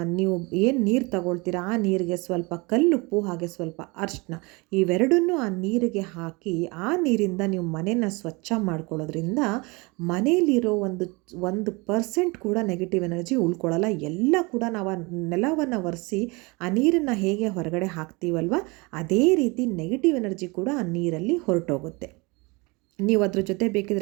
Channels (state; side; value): quieter; left; 26.8 dB